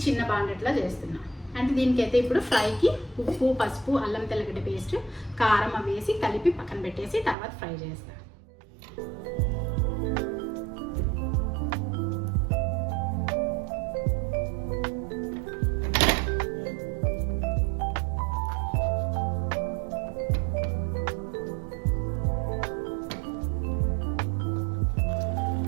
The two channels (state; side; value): drops out; left; at 7.4 s